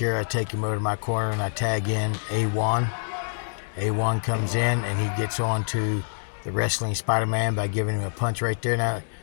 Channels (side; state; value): right; silent; digital silence